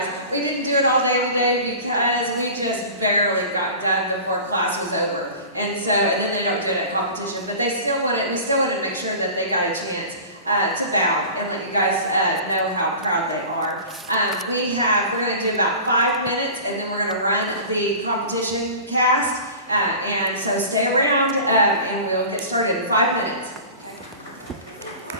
We didn't do it all day today because we just barely got done before class was over. And then they don't do it at competition, but we still wanted to make sure that they got a chance to bow and let you guys know how proud they are. We're going to do about 5 minutes, and then we're going to run the competition cast. And so stay around, and we'll get started in 5 minutes.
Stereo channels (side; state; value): both; inverted; correlation -0.37